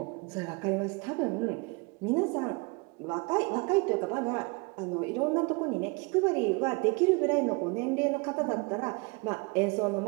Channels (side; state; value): left; quieter; 28.4 dB